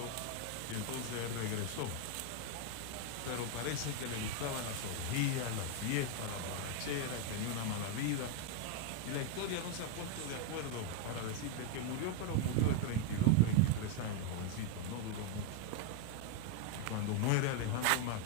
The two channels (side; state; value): both; different; correlation 0.01